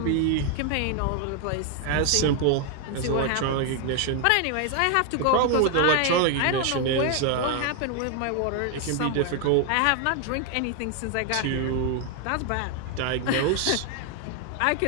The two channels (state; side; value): different; both; correlation 0.01